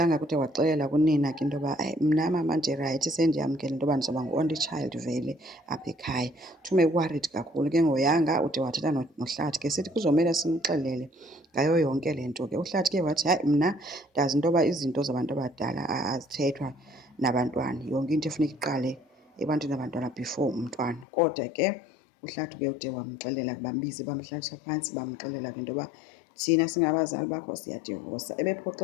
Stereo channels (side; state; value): right; drops out; at 21.1 s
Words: kude waxelela kunina ke into yoba mna mama ndirayithi, sendiyamkela into yoba ndizawuba ngu-only child vele apha ekhaya. Thume worried kakhulu ke ngoYanga, ude wathetha noHlathi ke sithi kuzomele simxelele ngayo yonke le nto ke. uHlathi ke wathi hayi, mna ndazi into yoba izinto zabantu abadala azithethwa nabantwana, yonke into efuneka iqale ebantwini abantwana before umntwana. Kodwa ke uHlathi ke ude wamxelela, bambiza bamhlalisa phantsi bamxelela ke into yoba thina singabazali bakho siyadivosa.